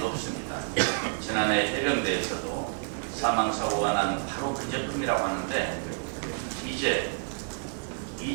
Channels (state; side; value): silent; left; 58 dB below the other